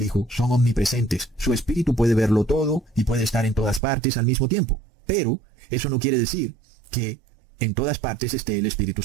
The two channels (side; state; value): left; drops out; at 3.8 s